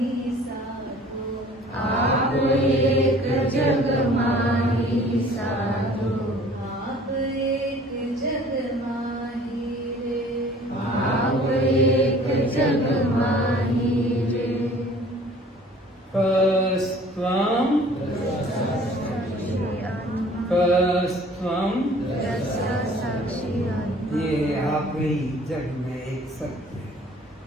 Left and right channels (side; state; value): both; normal; correlation 0.51